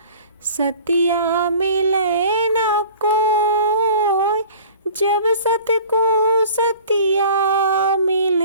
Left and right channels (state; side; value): inverted; both; correlation -0.45